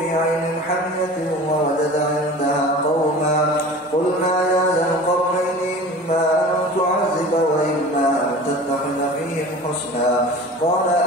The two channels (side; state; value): both; normal; correlation 0.38